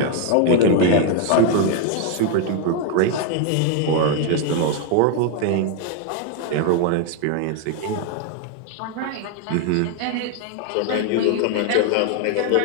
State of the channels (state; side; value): different; both; correlation 0.01